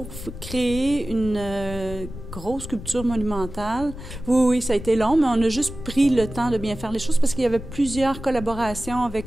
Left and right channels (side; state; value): left; noise; rumble, 11 dB below the sound